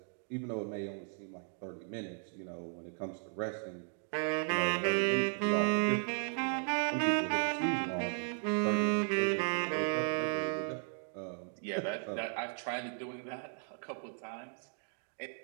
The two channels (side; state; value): left; silent; 54 dB below the other